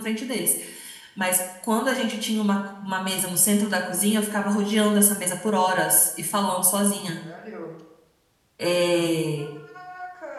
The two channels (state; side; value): identical; both; correlation 1.00